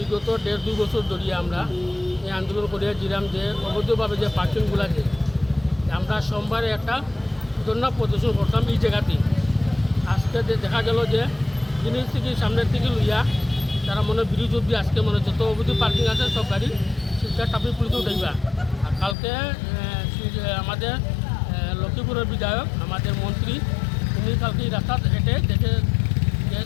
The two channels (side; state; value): right; drops out; at 19.2 s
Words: 1.5-2 বছর ধরে আমরা এই আন্দোলন করিয়া দিলাম যে অবৈধভাবে যে পার্কিংগুলো আছে, আমরা সোমবারে একটা ধর্ণা প্রদর্শন করতাম এই জায়গাতে। আজকে দেখা গেল যে জিনিস থেকে সামনের থেকে লইয়া তারা মনে বিরোধী অব্দি আজকে মনে যত অবৈধ পার্কিং আছে সব গাড়ি শিলচর ট্রাফিক পুলিশে উঠাইবা। আর কালকে আমাদের লক্ষ্মীপুরের বিধায়ক, আমাদের মন্ত্রী, উনি কালকে এই রাস্তা হেঁটে